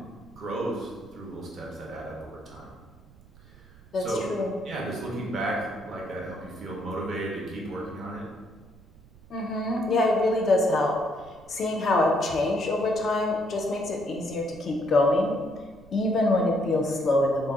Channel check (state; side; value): noise; right; rumble, 24 dB below the sound